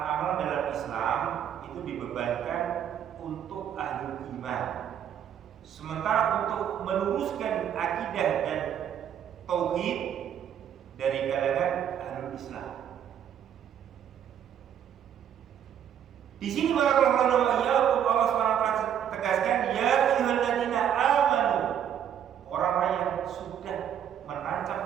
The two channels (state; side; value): quieter; left; 9.4 dB